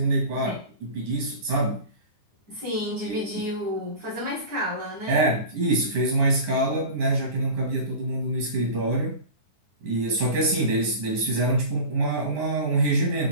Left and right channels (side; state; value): left; late; 9.9 ms